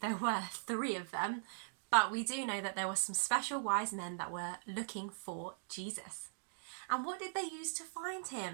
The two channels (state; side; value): silent; left; digital silence